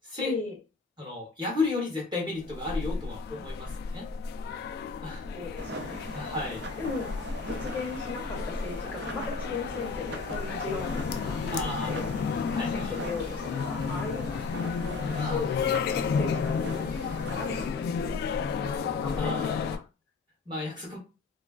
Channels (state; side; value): quieter; right; 4.3 dB